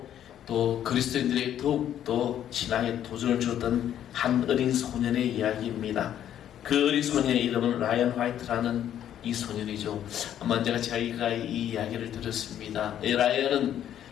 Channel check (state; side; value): quieter; right; 10.6 dB